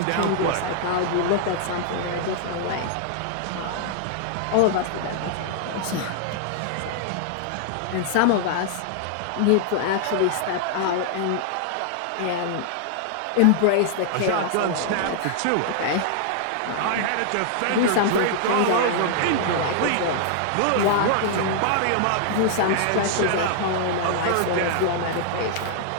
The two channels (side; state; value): both; different; correlation -0.01